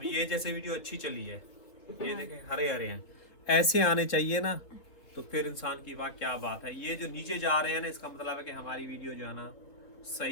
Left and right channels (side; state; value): right; late; 4.0 ms